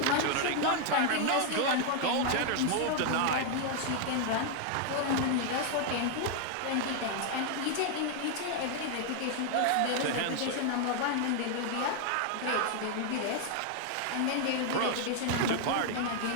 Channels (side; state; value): both; different; correlation 0.00